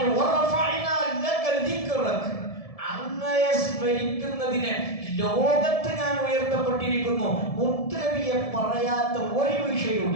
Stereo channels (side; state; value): right; late; 1.7 ms